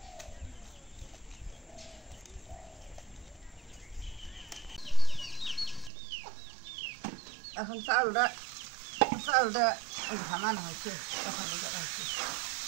এখন চাউলটা ঘামানো হয়েছে, এখন হচ্ছে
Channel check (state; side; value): drops out; left; at 5.9 s